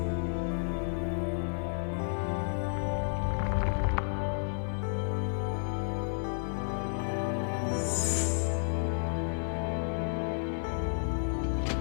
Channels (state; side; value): silent; right; 57 dB below the other